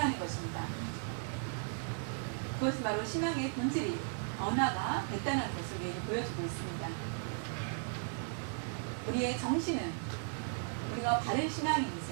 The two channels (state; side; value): silent; left; 54 dB below the other